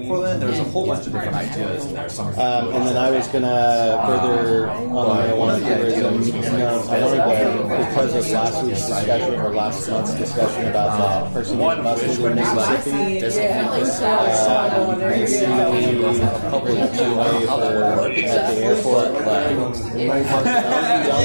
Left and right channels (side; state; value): both; inverted; correlation -1.00